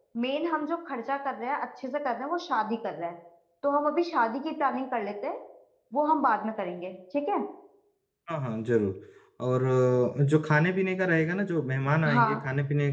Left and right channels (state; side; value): identical; both; correlation 1.00